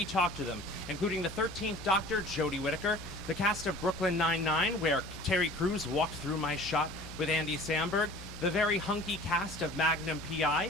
talk to them, including the 13th Doctor, Jodie Whittaker, the cast of Brooklyn Nine-Nine, where Terry Crews walked through my shot with Andy Samberg, the very hunky cast of Magnum P.I.,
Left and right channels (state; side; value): noise; left; hum, 15 dB below the sound